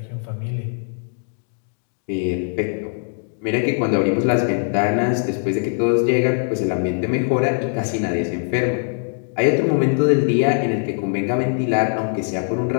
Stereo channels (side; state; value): right; silent; digital silence